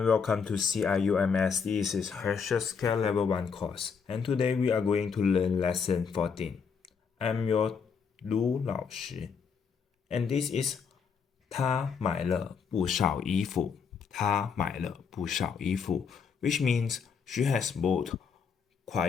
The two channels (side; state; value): right; quieter; 6.1 dB